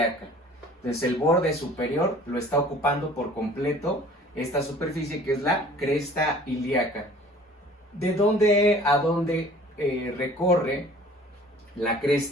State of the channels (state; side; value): normal; both; correlation 0.50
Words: Entonces el borde superior lo está ocupando por completo esta superficie que es la cresta ilíaca. ¿De dónde a dónde recorre la